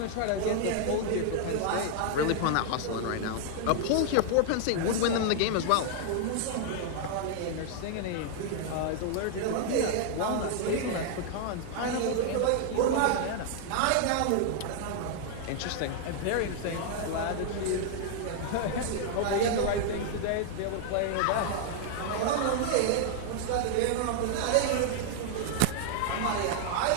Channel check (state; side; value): different; both; correlation -0.01